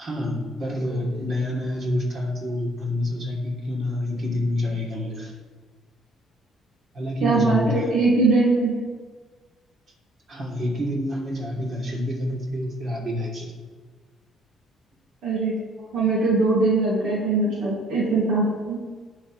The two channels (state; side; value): normal; both; correlation 0.59